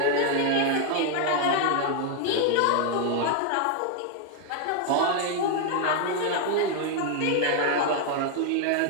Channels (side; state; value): both; different; correlation 0.00